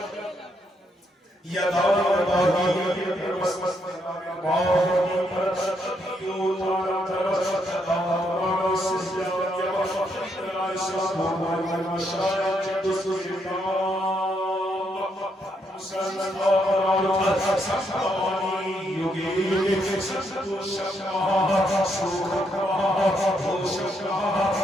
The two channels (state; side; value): normal; both; correlation 0.76